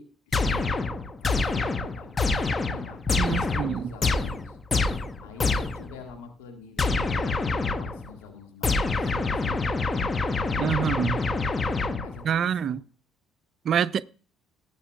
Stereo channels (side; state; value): both; normal; correlation 0.76